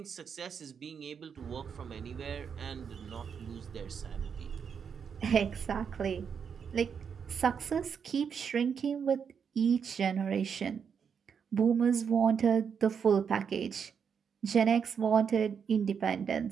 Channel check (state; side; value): quieter; left; 6.8 dB